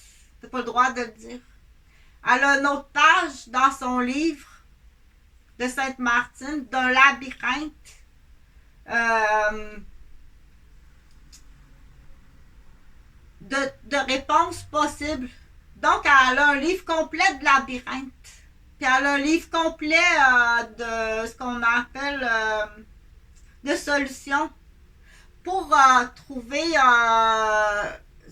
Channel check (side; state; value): both; identical; correlation 1.00